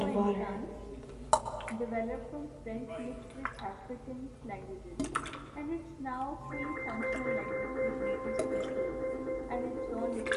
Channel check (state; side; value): identical; both; correlation 1.00